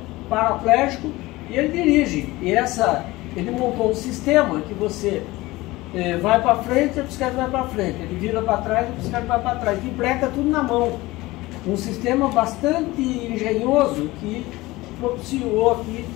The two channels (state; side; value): quieter; right; 19.8 dB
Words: paraplégico e ele dirige. E ele montou um sistema que você vai para frente, a bicicleta vai para frente, ele vira para trás, a bicicleta vai para trás, empreca tudo na mão. Um sistema bastante engenhoso que propiciou aqui